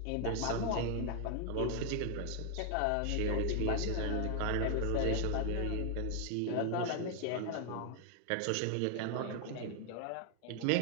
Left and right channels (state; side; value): different; both; correlation 0.00